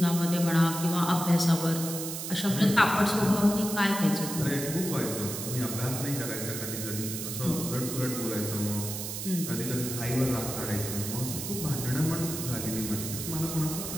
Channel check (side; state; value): right; noise; hiss, 6 dB below the sound